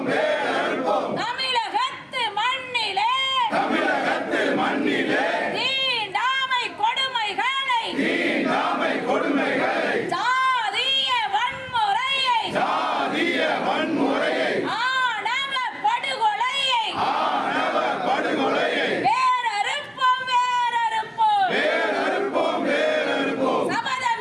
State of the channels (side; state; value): both; identical; correlation 1.00